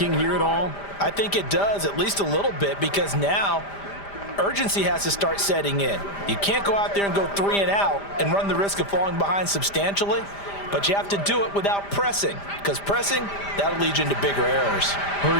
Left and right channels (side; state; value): right; late; 5.0 ms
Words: here at all? I think it does, at least a little bit, because now urgency has to start setting in. You can't go out there and go 3 and out and run the risk of falling behind substantially, but you have to do it without pressing, because pressing, that'll lead you into bigger errors.